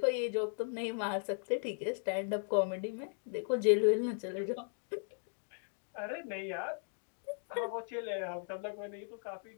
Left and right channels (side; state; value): right; silent; digital silence